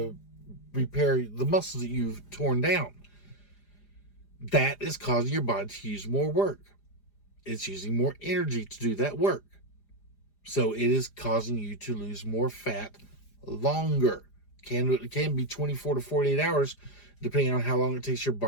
repair the muscles that you've torn down. That is causing your body to use more work. It's using more energy to do that work. So it is causing you to lose more fat longer. It can be 24 to 48 hours, depending on how long it takes your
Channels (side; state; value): right; late; 4.9 ms